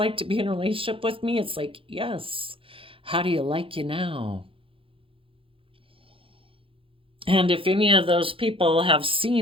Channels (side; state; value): left; late; 0.26 ms